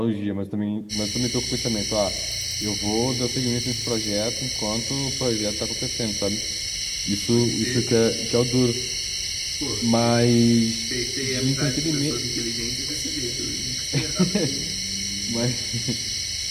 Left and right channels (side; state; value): both; identical; correlation 1.00